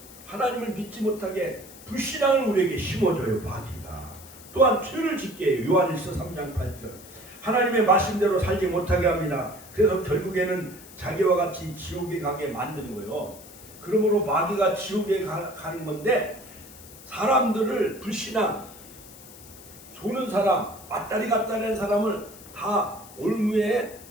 하나님을 믿지 못하게 불신앙을 우리에게 심어줘요. 마귀가. 또한 죄를 짓게 해요. 요한일서 3장 8절. 하나님의 말씀대로 살지 못하게 합니다. 그래서 결국에는 자기와 같이 지옥에 가게 만드는 거예요. 그러므로 마귀가 지옥에 가는 건데, 사람들을 불신앙, 조는 사람, 맞다리 갔다리 하는 사람을 다 올무에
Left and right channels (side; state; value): left; noise; hiss, 19 dB below the sound